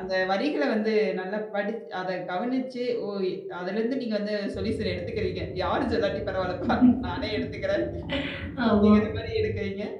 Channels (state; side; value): identical; both; correlation 1.00